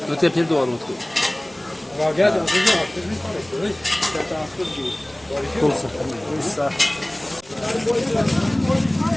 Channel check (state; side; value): noise; right; hum, 30 dB below the sound